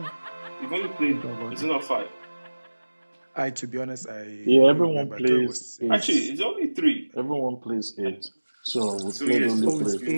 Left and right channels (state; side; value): inverted; both; correlation -1.00